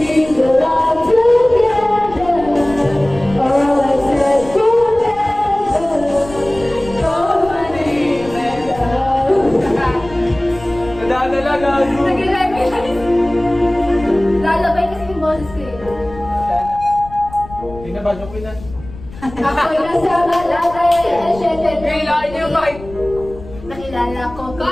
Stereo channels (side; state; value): left; noise; rumble, 16 dB below the sound